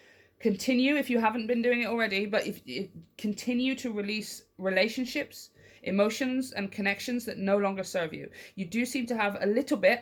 continue, if you haven't been doing it already, but if continue to release relationships, emotions and connections that no longer serve you. You do seem to have a little bit,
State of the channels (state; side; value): identical; both; correlation 1.00